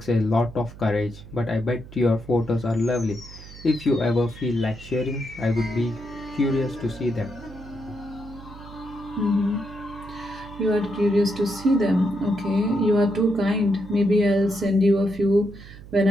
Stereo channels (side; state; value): right; noise; hum, 17 dB below the sound